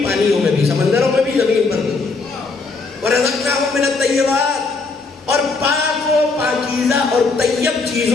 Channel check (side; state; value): right; quieter; 4.0 dB